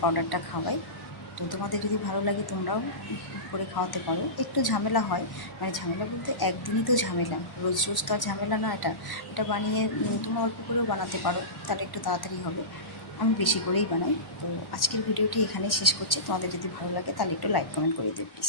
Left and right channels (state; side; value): late; right; 1.1 ms